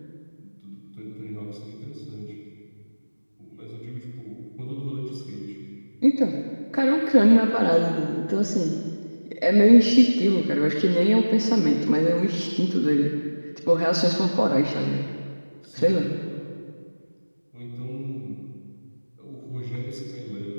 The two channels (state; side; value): inverted; both; correlation -1.00